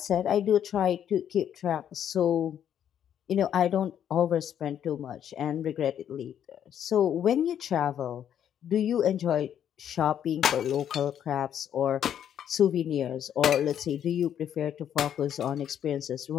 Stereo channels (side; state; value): right; quieter; 9.6 dB